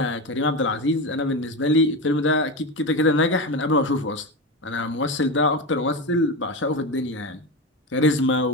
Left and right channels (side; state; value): both; normal; correlation 0.19